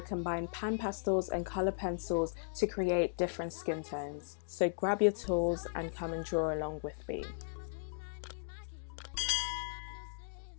combine pan pastels and colour pencils to create different skin tones. So grab your tools and come and draw along with me.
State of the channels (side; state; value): right; silent; digital silence